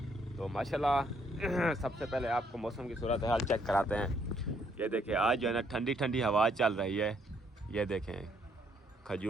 तो माशाल्लाह सबसे पहले आपको मौसम की सूरत हाल चेक कराते हैं। ये देखें, आज जो है ना ठंडी ठंडी हवा चल रही है। ये देखें,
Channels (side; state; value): both; normal; correlation 0.70